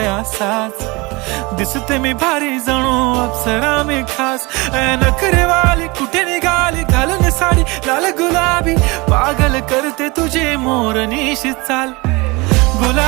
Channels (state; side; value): quieter; left; 25.1 dB